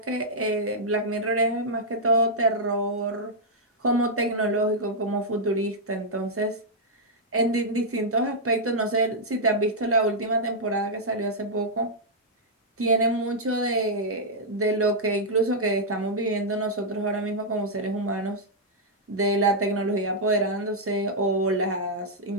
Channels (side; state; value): both; normal; correlation -0.06